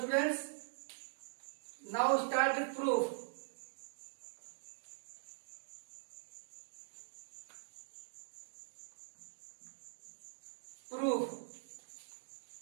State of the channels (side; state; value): left; silent; digital silence